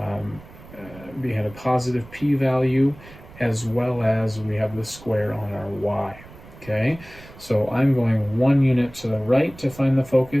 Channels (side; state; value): right; noise; rumble, 20 dB below the sound